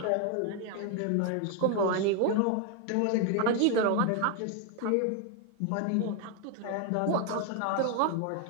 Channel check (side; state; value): both; different; correlation 0.01